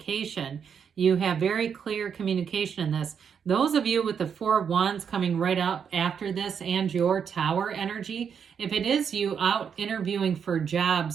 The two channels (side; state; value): left; quieter; 7.2 dB